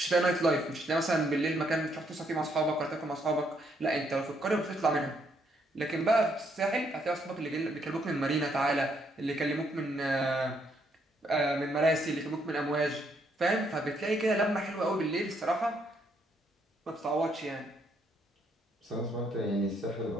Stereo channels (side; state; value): both; normal; correlation 0.73